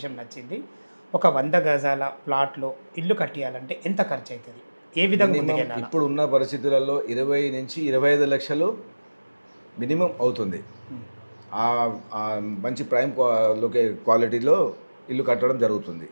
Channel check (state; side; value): inverted; both; correlation -1.00